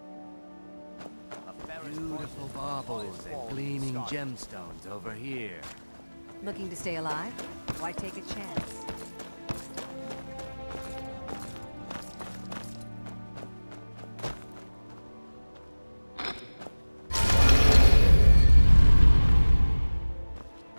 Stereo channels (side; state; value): both; inverted; correlation -1.00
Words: Beautiful baubles and gleaming gemstones over here. Looking to stay alive? Why take a chance?